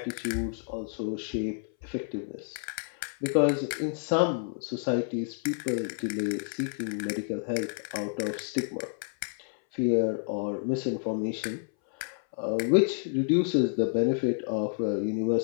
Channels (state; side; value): silent; right; 58 dB below the other